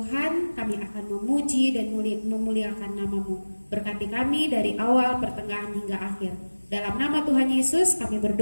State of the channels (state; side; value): inverted; both; correlation -1.00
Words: kami akan memuji dan memuliakan nama-Mu. Berkati kami dari awal, pertengahan hingga akhir. Dalam nama Tuhan Yesus kami